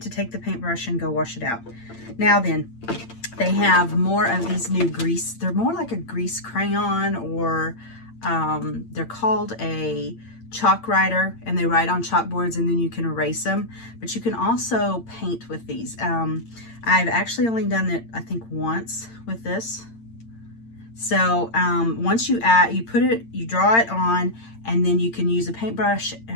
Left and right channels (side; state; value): right; late; 8.8 ms